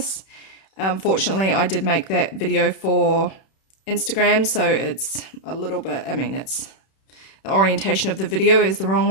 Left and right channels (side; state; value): right; late; 31 ms